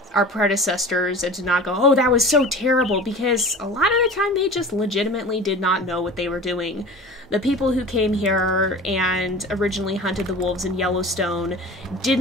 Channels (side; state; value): both; normal; correlation 0.37